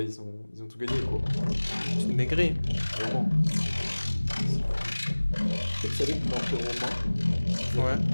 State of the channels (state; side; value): inverted; both; correlation -1.00